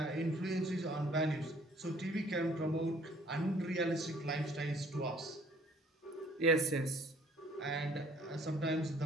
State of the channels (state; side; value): normal; both; correlation 0.58